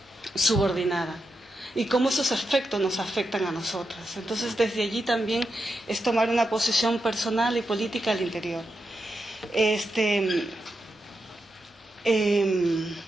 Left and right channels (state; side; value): normal; both; correlation 0.86